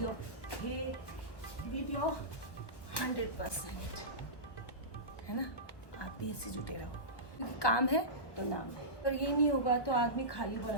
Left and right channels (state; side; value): late; right; 1.2 ms